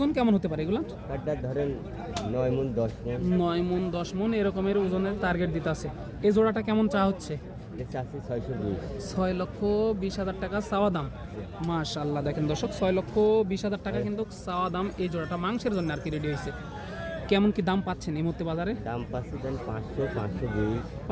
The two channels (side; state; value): both; identical; correlation 1.00